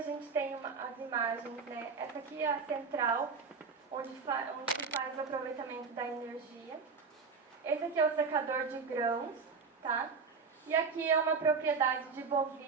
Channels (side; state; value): left; quieter; 5.2 dB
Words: gente tem as imagens, né? Essa aqui é a central, onde se faz o aproveitamento da energia. Esse aqui é o secador de grãos, tá? E aqui é uma propriedade de